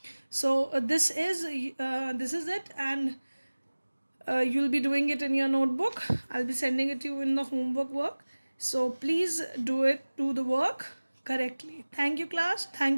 So this is it, and you'll be doing it in your notebook. I'll be sending it to you in the homework work. So please do the work correctly. Thank you, class.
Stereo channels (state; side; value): inverted; both; correlation -1.00